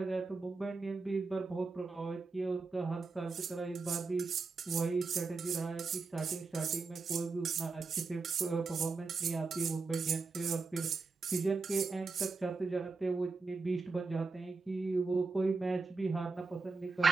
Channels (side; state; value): left; quieter; 4.1 dB